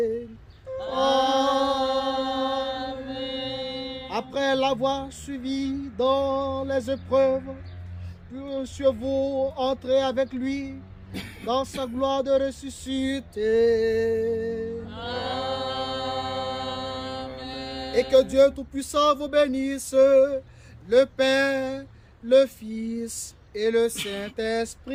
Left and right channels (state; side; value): identical; both; correlation 1.00